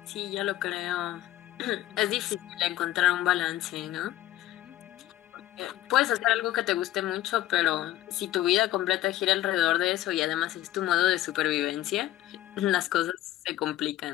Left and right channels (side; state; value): right; quieter; 14.2 dB